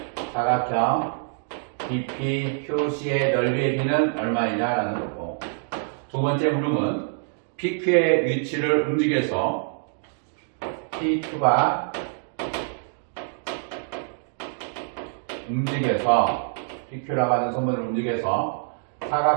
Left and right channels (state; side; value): silent; left; digital silence